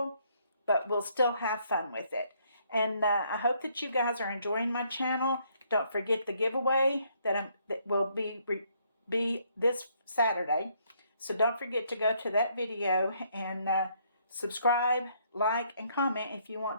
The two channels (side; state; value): both; inverted; correlation -0.69